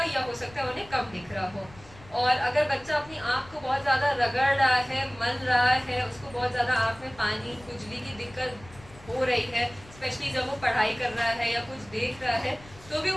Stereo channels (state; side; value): noise; left; rumble, 22 dB below the sound